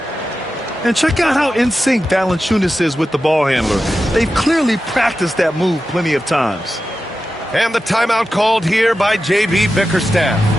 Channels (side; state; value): both; normal; correlation 0.92